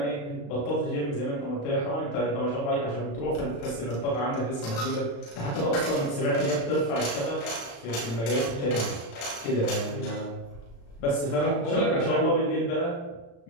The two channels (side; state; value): right; late; 35 ms